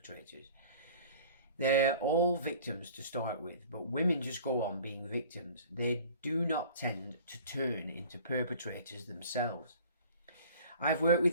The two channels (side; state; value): both; inverted; correlation -0.46